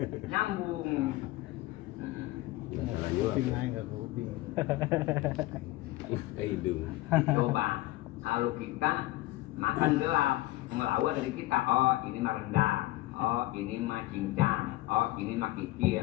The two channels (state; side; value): quieter; right; 18.1 dB